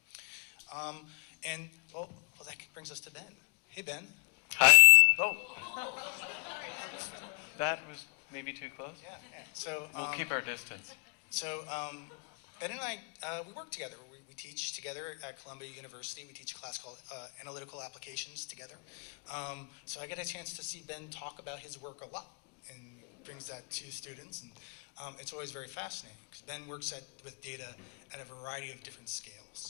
Well, that brings us to Ben. Hey, Ben. Hi. Oh. That was maybe too close. Yeah. So We'll keep our distance. So Ben and I, we work together. We teach together at Columbia University. We teach a class called Analytical Applications together. So I get a chance to see Ben talk about his work a lot and brings that to students. And it's always very fascinating because Ben works with data at a variety of different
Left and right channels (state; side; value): quieter; right; 35.9 dB